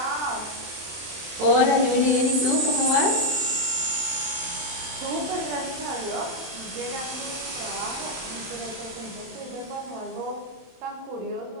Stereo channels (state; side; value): late; left; 27 ms